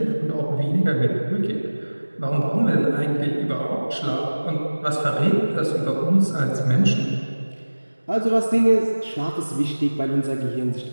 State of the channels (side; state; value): both; inverted; correlation -1.00